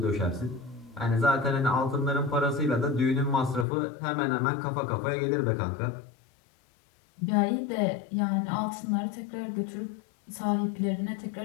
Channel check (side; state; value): right; drops out; at 3.7 s